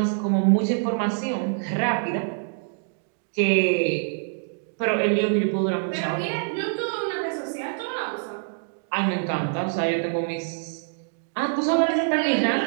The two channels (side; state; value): left; silent; digital silence